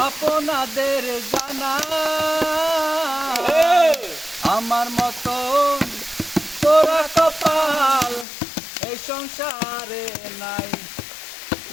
আপনাদের জানা আমার মতন তোরা কপাল এই সংসারে নাই।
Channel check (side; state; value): right; drops out; at 8.2 s